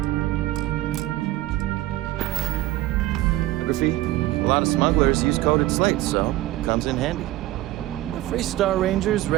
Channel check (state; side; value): quieter; left; 16.1 dB